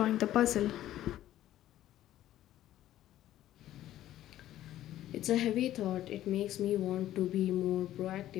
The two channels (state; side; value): quieter; right; 13.2 dB